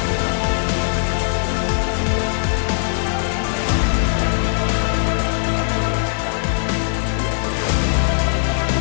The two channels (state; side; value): silent; right; digital silence